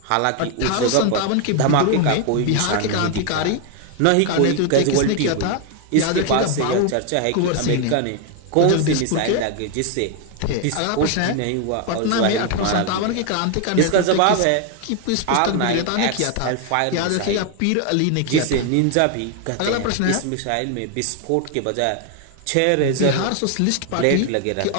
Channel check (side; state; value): both; different; correlation 0.00